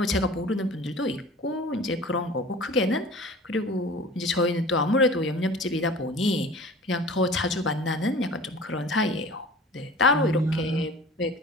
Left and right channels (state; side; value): normal; both; correlation 0.42